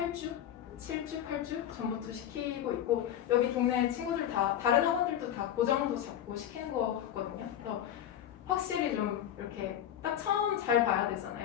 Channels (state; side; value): quieter; right; 10.7 dB